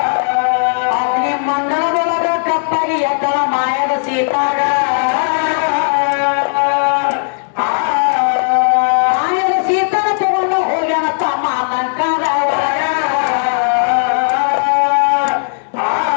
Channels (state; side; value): silent; right; digital silence